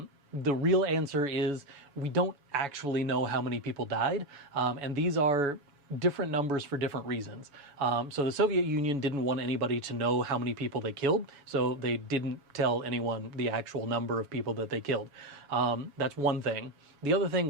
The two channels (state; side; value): late; left; 7.0 ms